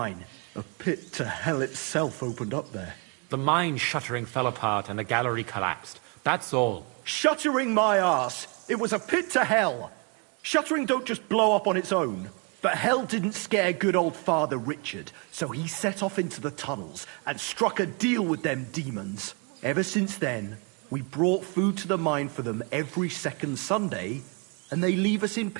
A pit to hell itself opened up there. The mine shuttering fell apart and the gallery collapsed. That's all. Shuttering my arse! It was a pit to hell! Shuttering don't just blow up on its own. But hell didn't scare good old Father Richard, so he set off into the tunnels and struck a deal with them demons. Ever since then, we brought food to the mine for them every second Sunday, and they leave us in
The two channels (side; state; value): left; quieter; 33.8 dB